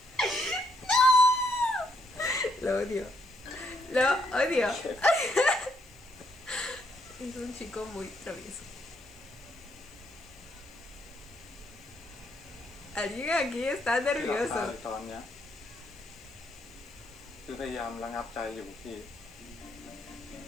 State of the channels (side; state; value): left; noise; hiss, 29 dB below the sound